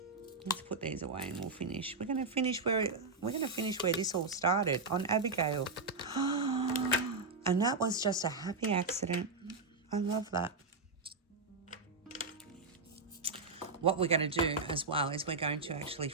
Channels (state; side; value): quieter; left; 3.8 dB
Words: Let's put these away and we'll finish. We're gonna finish where this all started, on Abigail. And that was just a happy accident. I love that. What we're going to do as well is we're going to actually